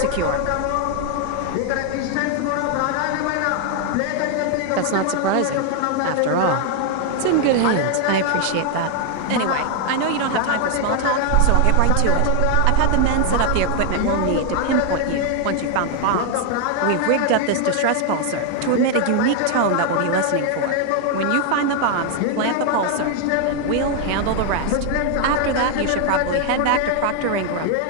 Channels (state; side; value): different; both; correlation 0.00